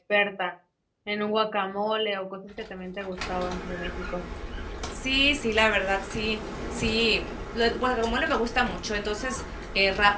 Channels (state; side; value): identical; both; correlation 1.00